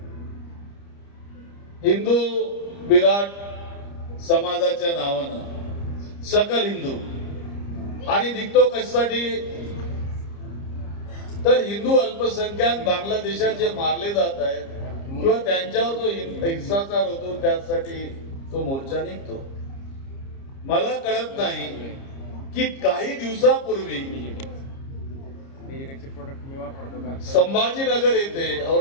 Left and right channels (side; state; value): right; late; 30 ms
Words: हिंदू विराट समाजाच्या नावानं, सकल हिंदू. आणि निघतो कशासाठी तर हिंदू अल्पसंख्याक बांगलादेशात जे मारले जात आहेत किंवा त्यांच्यावर जो हिंसाचार होतो त्यासाठी तो मोर्चा निघतो. मला कळत नाही की काही दिवसापूर्वी डिजिटलचे प्रोडक्ट मी वापरतो का? संभाजीनगर येथे,